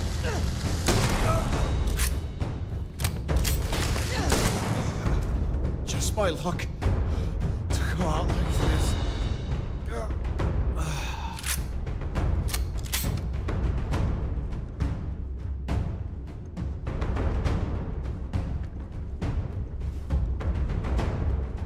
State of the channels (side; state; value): both; identical; correlation 1.00